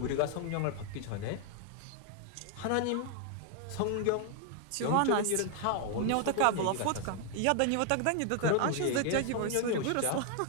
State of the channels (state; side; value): different; both; correlation 0.00